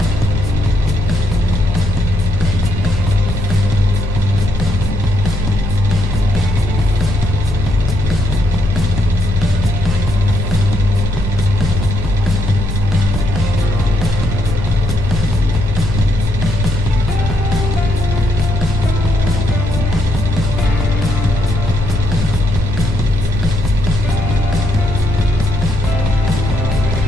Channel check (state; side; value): normal; both; correlation 0.76